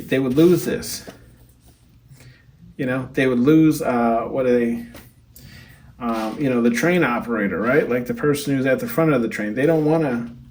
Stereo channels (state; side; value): identical; both; correlation 1.00